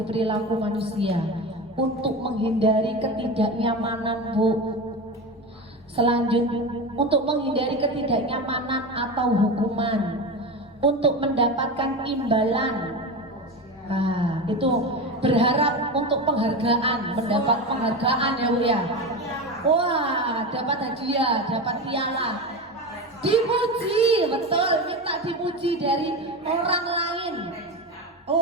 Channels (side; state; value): both; normal; correlation 0.23